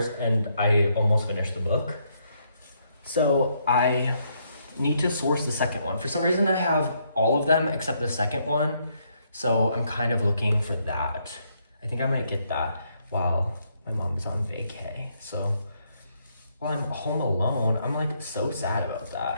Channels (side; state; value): both; inverted; correlation -0.74